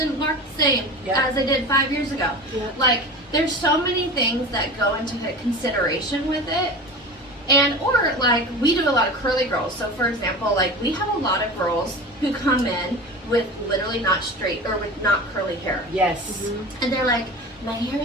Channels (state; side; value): normal; both; correlation 0.32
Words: work the same as they did 5 years ago. Like, there's so many things that go into consideration with it. And, or like, we do a lot of curly girls. So for example, like, we have a lot of girls who come in with literally not straight, or with not curly hair. Yes. And they're like, my hair